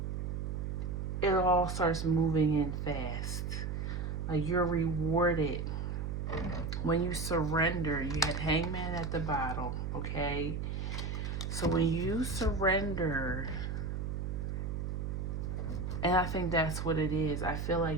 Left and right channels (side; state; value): right; noise; hum, 3 dB below the sound